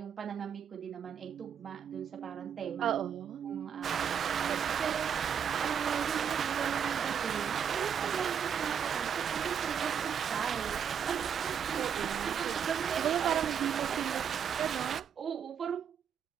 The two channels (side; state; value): left; quieter; 8.0 dB